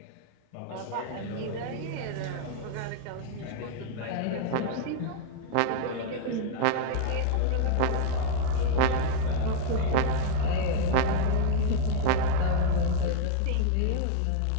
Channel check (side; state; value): both; different; correlation 0.00